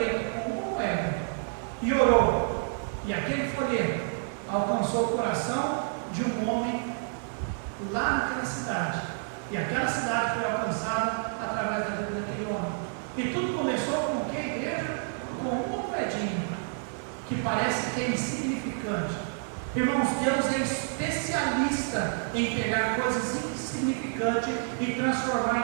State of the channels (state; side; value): silent; left; 59 dB below the other